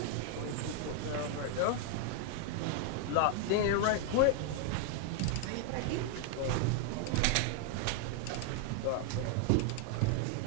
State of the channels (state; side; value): different; both; correlation 0.00